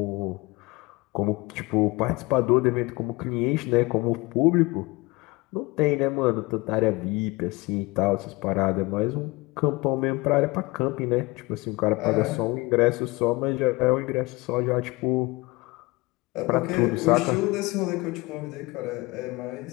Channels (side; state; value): right; quieter; 23.2 dB